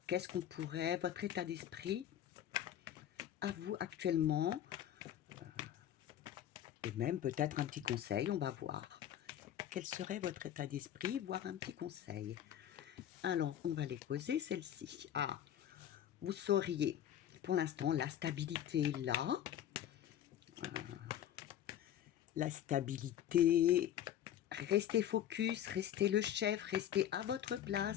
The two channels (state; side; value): quieter; right; 10.9 dB